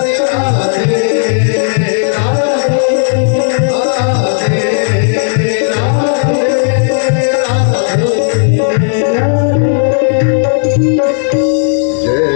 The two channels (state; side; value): silent; right; digital silence